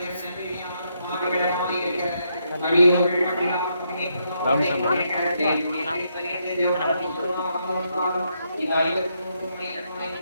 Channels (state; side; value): inverted; both; correlation -0.78